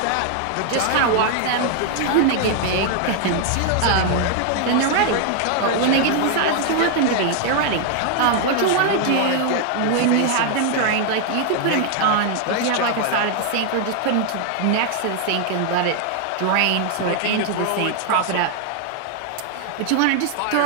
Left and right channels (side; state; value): both; different; correlation 0.00